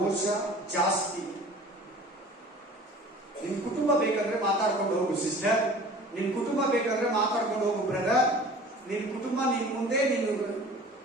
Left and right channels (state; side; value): normal; both; correlation 0.44